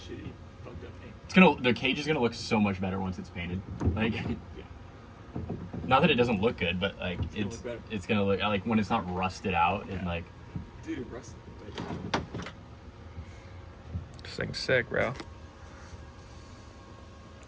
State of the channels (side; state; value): both; identical; correlation 1.00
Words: fucked up paint. The cage is gonna look so much better once it's painted. Like, Yeah. not that it doesn't look good, but like gonna look better. it's gonna look like when it's not rusted out and like. Dude, rusted. This thing's sick, bro.